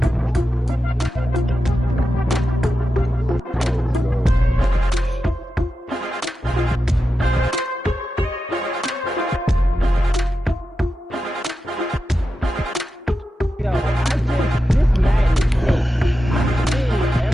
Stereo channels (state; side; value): normal; both; correlation 0.90